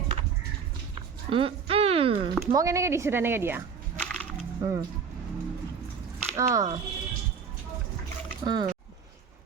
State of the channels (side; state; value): left; quieter; 6.2 dB